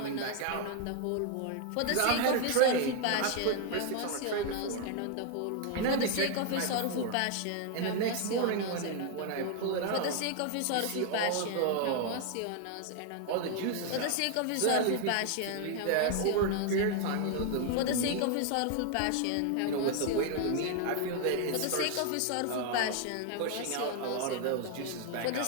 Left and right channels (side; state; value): both; different; correlation 0.00